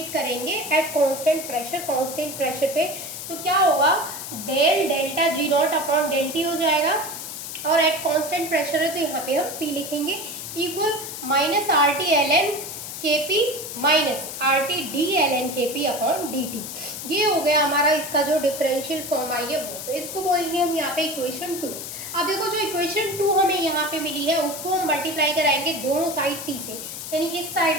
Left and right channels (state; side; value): noise; left; hiss, 8 dB below the sound